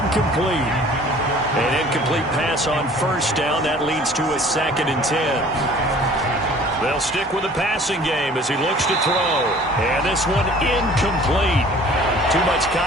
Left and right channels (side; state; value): both; normal; correlation 0.50